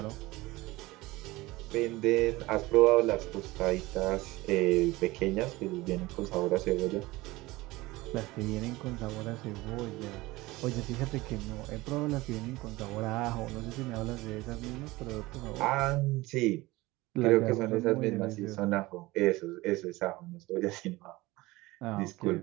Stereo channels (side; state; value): left; quieter; 20.2 dB